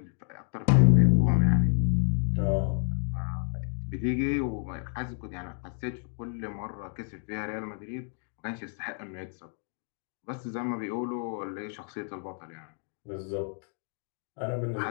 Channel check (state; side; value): silent; right; 55 dB below the other